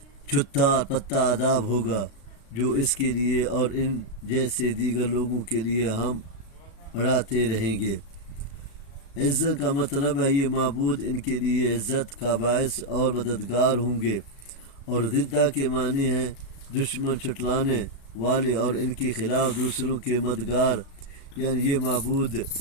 چھٹا پتا عذاب ہوگا جو اس کے لیے اور ان جیسے دیگر لوگوں کے لیے ہم بڑھاتے رہیں گے۔ عزت کا مطلب ہے یہ معبود ان کے لیے عزت کا باعث اور مددگار ہوں گے، اور ضدہ کے معنی ہیں دشمن چھٹلانے والے اور ان کے خلاف دوسروں کے مددگار، یعنی یہ معبود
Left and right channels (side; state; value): right; late; 36 ms